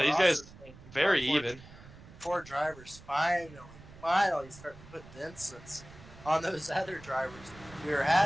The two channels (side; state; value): right; noise; rumble, 19 dB below the sound